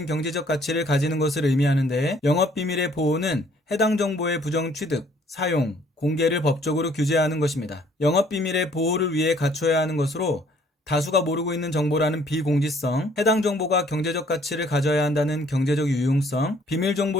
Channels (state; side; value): normal; both; correlation 0.61